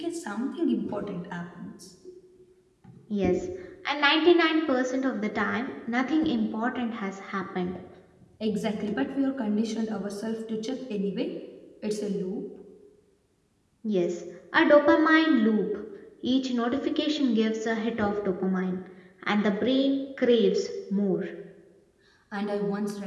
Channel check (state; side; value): identical; both; correlation 1.00